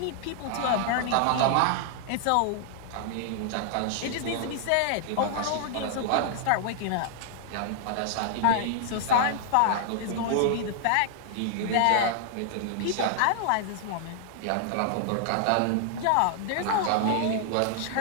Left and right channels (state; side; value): different; both; correlation -0.01